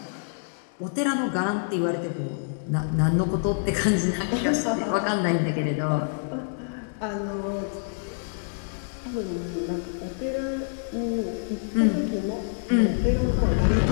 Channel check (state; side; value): silent; right; digital silence